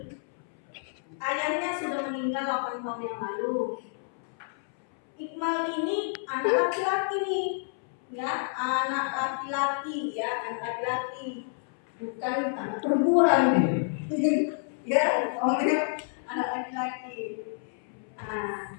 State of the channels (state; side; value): silent; right; 59 dB below the other